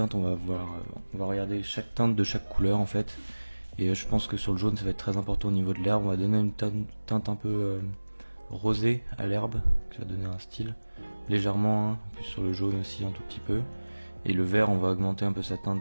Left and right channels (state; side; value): inverted; both; correlation -1.00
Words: on va regarder chaque teinte de chaque couleur en fait. Et je pense que sur le jaune, ça va être très important au niveau de l'herbe. On va donner une teinte un peu rosée à l'herbe, qui va donner un style légèrement, hein, puis sur le jaune aussi un tout petit peu. Et le vert, on va augmenter un peu sa